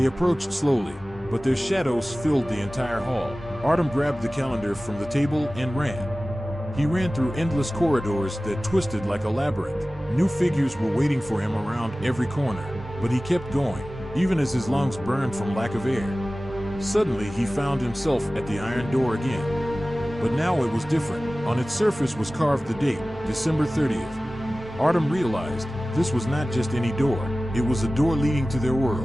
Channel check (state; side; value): normal; both; correlation 0.97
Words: approached slowly, but their shadows filled the entire hall. Artem grabbed the calendar from the table and ran. He ran through endless corridors that twisted like a labyrinth. New figures were waiting for him around every corner, but he kept going, even as his lungs burned from lack of air. Suddenly he found himself at the iron door again. But now it was different. On its surface was carved the date, December 30th. Artem realized this was not just any door, it was a door leading to their